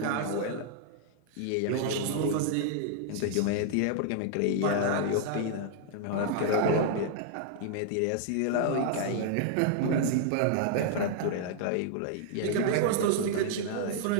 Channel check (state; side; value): different; both; correlation -0.01